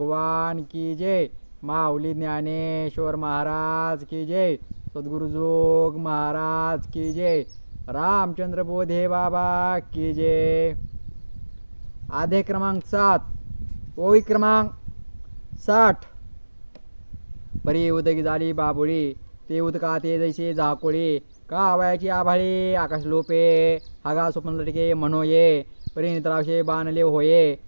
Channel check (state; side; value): inverted; both; correlation -1.00